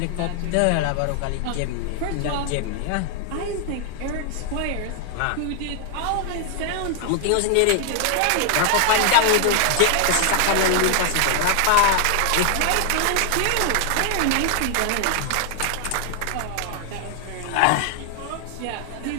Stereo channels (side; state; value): both; different; correlation 0.00